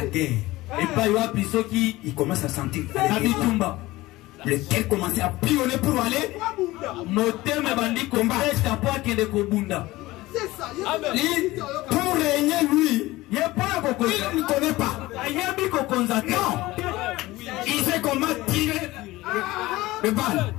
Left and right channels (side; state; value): right; quieter; 18.7 dB